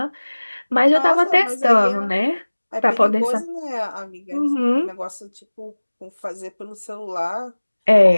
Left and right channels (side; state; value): both; inverted; correlation -1.00